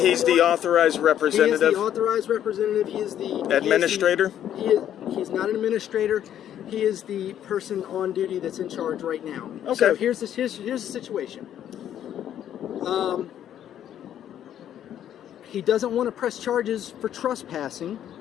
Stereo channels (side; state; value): right; quieter; 10.6 dB